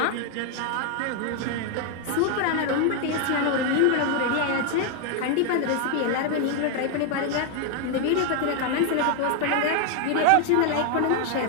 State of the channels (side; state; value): both; different; correlation 0.00